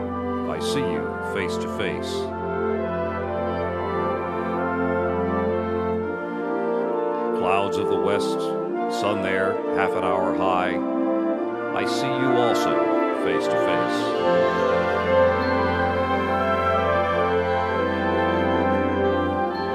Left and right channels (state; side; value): identical; both; correlation 1.00